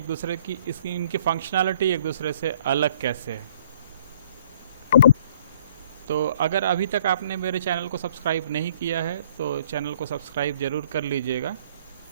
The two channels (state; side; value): inverted; both; correlation -0.59